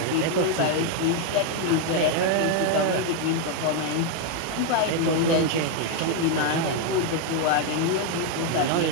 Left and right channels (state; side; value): different; both; correlation 0.01